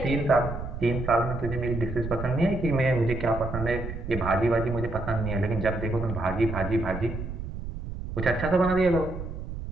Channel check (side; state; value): right; noise; rumble, 7 dB below the sound